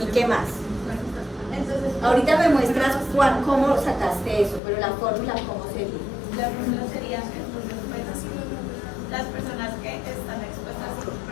¿Y qué más? Entonces, Ahorita me muestras cómo sacaste eso, pero la fórmula, ¿cómo sería? la fórmula sería entonces, pues, las personas que están expuestas y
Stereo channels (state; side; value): drops out; right; at 4.6 s